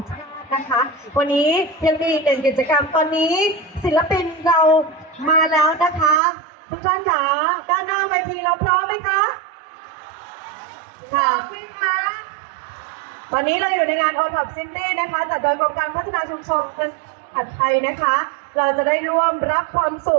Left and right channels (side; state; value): left; drops out; at 6.2 s